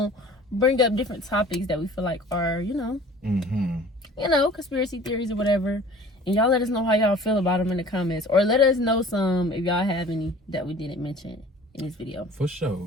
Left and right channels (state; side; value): normal; both; correlation 0.47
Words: bring up different topics that we feel like are, conspiracy theories or whatever. And y'all let us know how y'all feel about them in the comments. Or let us know some if y'all have any that we didn't mention in this video. For